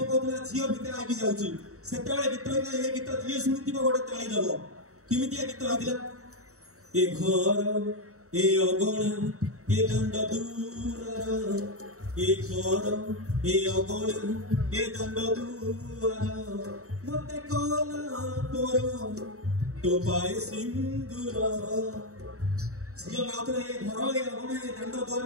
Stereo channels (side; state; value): left; late; 0.64 ms